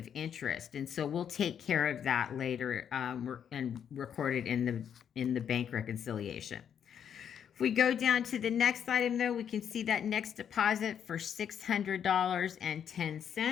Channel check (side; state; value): right; quieter; 8.5 dB